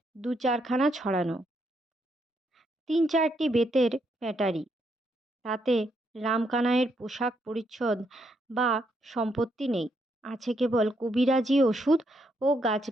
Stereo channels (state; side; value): normal; both; correlation 0.76